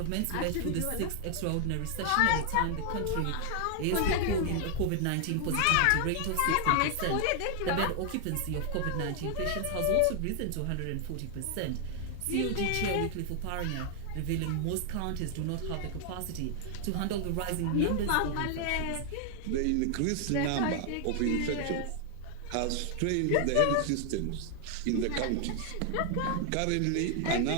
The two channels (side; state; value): both; different; correlation 0.00